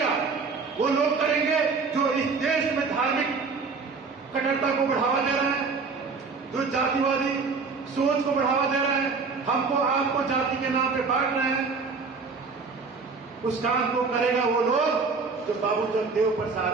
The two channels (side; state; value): left; quieter; 4.7 dB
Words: वो लोग करेंगे जो इस देश में धार्मिक कट्टरता को बढ़ावा दे रहे हैं, जो जातिवादी सोच को बढ़ावा दे रहे हैं, हमको आपको जाति के नाम पे बांट रहे हैं। उस काम को करेगा वो लोग जो बाबू जगदेव